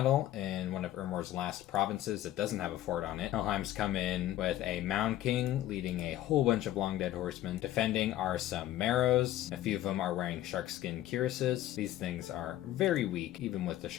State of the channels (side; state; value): right; quieter; 13.7 dB